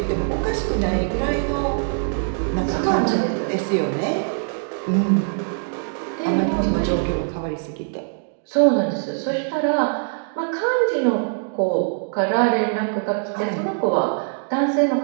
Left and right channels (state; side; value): silent; left; digital silence